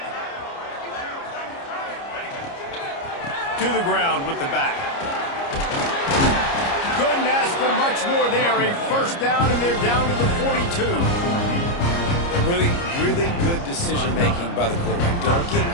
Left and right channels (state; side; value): late; right; 29 ms